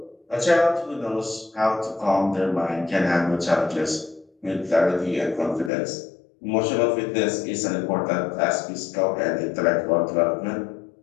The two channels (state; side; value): drops out; right; at 5.7 s